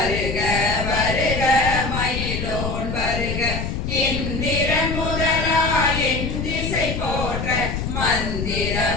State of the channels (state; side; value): noise; left; rumble, 3 dB below the sound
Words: வருக மயிலோன் வருக இந்திரன் முதலா என் திசை போற்ற மந்திர